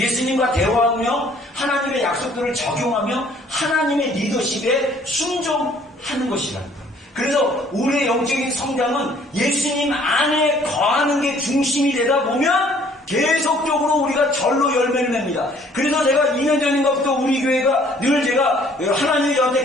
대화하며 하나님의 약속들을 적용하며 하나님의 리더십에 순종하는 것이라는 거예요. 그래서 우리의 영적인 성장은 예수님 안에 거하는 게 중심이 되다 보면 계속적으로 우리가 절로 열매를 냅니다. 그래서 제가 2년 전인가부터 우리 교회가 늘 제가 하나님이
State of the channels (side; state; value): both; normal; correlation 0.59